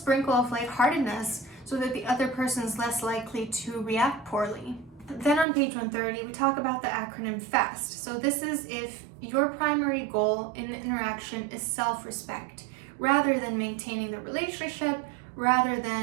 of lightheartedness so that the other person is less likely to react poorly. Then on page 130, we talk about the acronym FAST. So this is if your primary goal in an interaction is self-respect, rather than maintaining the relationship rather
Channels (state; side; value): drops out; left; at 5.5 s